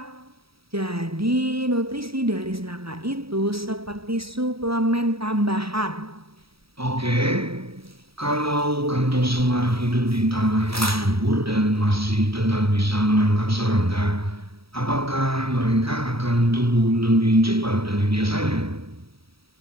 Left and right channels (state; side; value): late; left; 0.76 ms